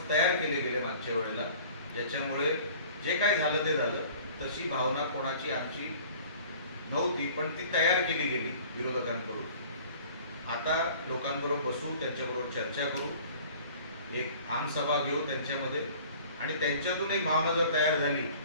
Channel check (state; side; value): inverted; both; correlation -0.48